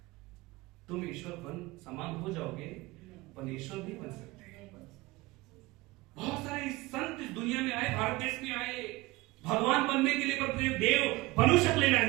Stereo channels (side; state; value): left; quieter; 20.8 dB